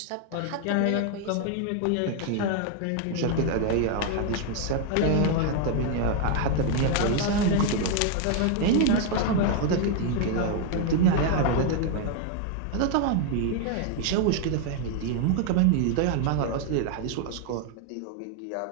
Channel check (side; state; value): both; different; correlation 0.01